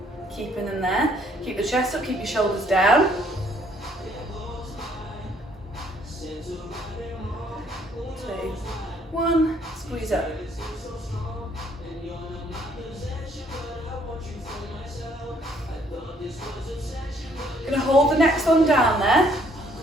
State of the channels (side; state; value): both; normal; correlation 0.65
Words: Keeping them there. Keep the chest up, keep your shoulders down. 1, squeeze up. Going to hold the next one down there.